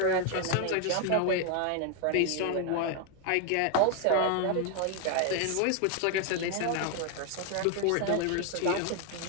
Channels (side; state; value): both; different; correlation 0.01